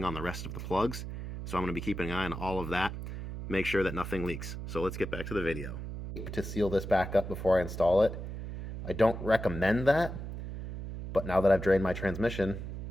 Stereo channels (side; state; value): right; noise; hum, 7 dB below the sound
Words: on the rest of the plugs, so I'm going to be keeping an eye on all of that, make sure that nothing leaks. So let's get back to the video. To seal this back up before I install it. I don't recommend that, but now that I've drained my transmission,